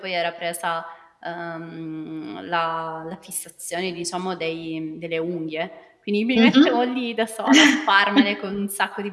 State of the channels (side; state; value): both; identical; correlation 1.00